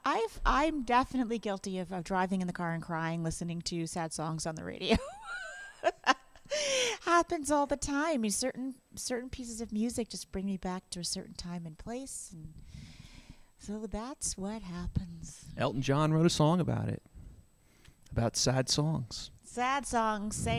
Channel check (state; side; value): identical; both; correlation 1.00